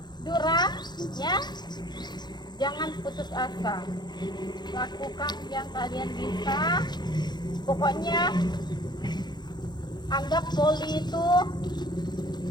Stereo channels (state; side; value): late; right; 0.21 ms